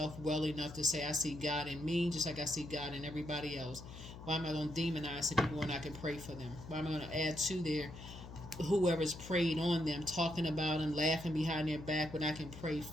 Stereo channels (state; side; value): noise; left; hum, 13 dB below the sound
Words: well enough to say, I see God in me just like I see God in everybody else. Why am I going to demonize the people when I can pray for them? Why am I going to add to their whoever's prayed on them, talking about them, laughing behind their back when I can pray